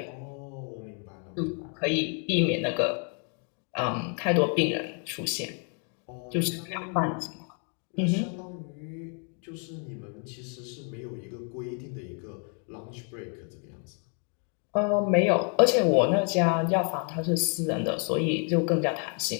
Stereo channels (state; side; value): quieter; right; 39.0 dB